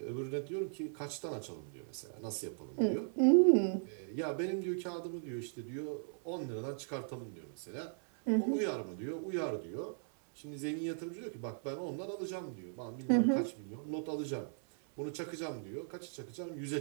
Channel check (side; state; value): left; silent; 53 dB below the other